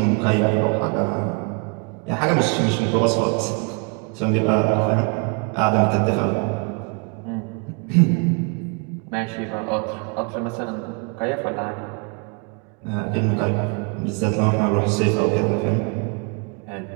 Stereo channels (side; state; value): left; quieter; 33.1 dB